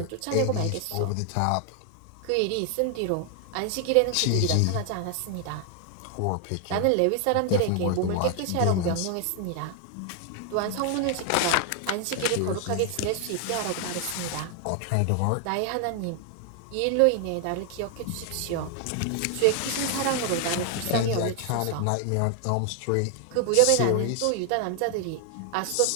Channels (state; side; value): different; both; correlation 0.00